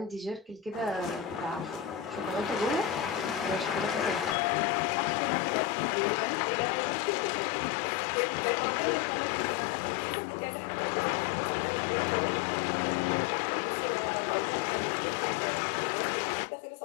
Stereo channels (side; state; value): right; drops out; at 4.4 s